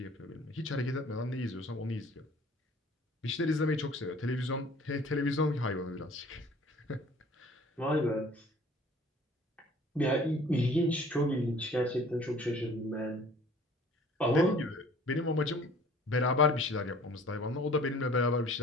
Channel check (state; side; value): normal; both; correlation 0.51